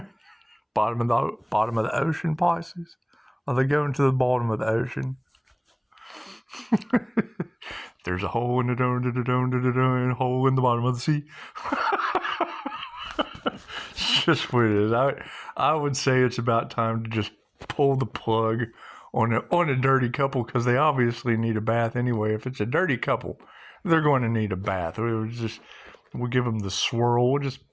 bottom of the ocean, Pisces. Are they going to the bottom of the ocean? There's a hole in the hole in the bottom of the sea. It's just what it is. I would say it's about time to just pull the plug on a dirty couple, because they obviously need a bath anyway. If it's a dirty couple, they're going to need a bath. We'll give them the swirl. We'll just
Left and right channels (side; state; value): both; identical; correlation 1.00